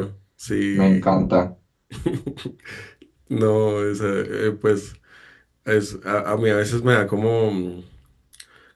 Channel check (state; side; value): identical; both; correlation 1.00